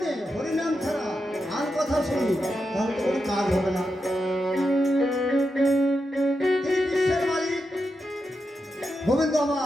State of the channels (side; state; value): both; normal; correlation 0.87